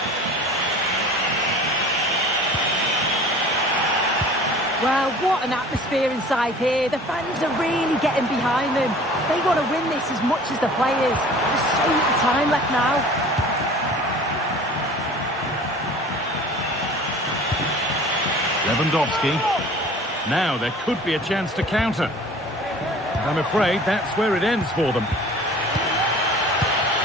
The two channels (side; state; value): both; normal; correlation 0.45